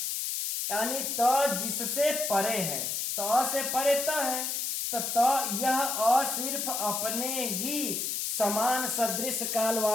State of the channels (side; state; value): left; noise; hiss, 1 dB below the sound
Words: यानी त जिससे परे है, त से परे त है, तो त यह अ सिर्फ अपने ही समान सदृश काल